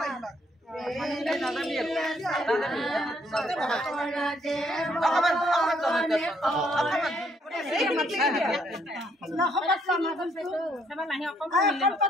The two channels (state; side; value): normal; both; correlation 0.69